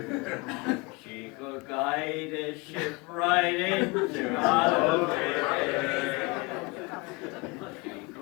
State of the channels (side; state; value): right; quieter; 25.5 dB